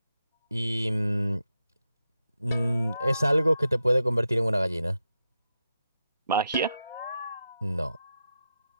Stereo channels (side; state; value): both; inverted; correlation -0.87